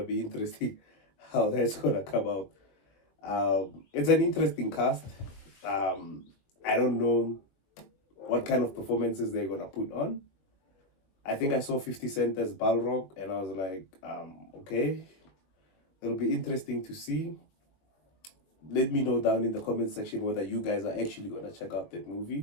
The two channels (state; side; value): late; right; 21 ms